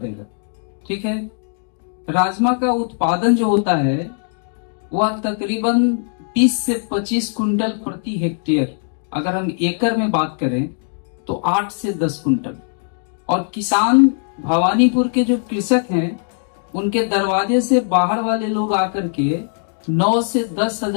ठीक है। राजमा का उत्पादन जो होता है वह तकरीबन 20 से 25 कुंटल प्रति हेक्टेयर, अगर हम एकड़ में बात करें तो 8 से 10 कुंटल। और किसान भवानीपुर के जो कृषक हैं उनके दरवाजे से बाहर वाले लोग आकर के 9 से 10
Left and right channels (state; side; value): silent; right; digital silence